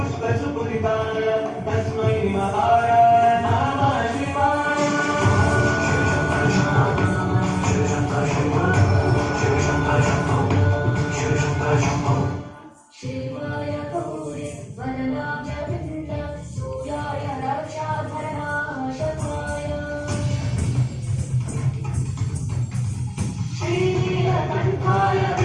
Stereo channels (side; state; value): both; identical; correlation 1.00